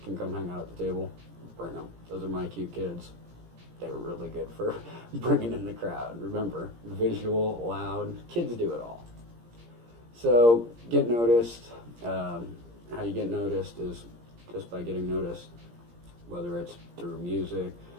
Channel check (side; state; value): left; late; 17 ms